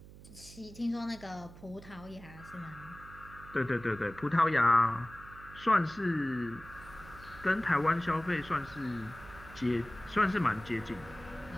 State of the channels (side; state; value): right; noise; hum, 18 dB below the sound